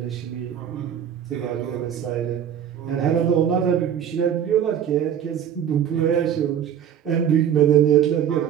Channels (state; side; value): quieter; left; 9.2 dB